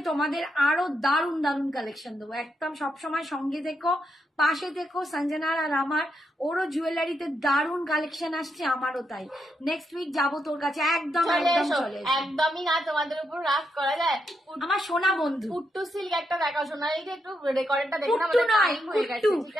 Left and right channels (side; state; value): both; normal; correlation 0.82